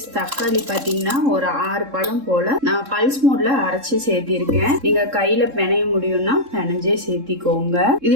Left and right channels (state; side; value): late; left; 3.7 ms